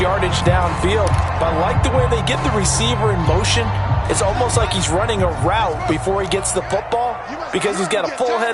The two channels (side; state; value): both; identical; correlation 1.00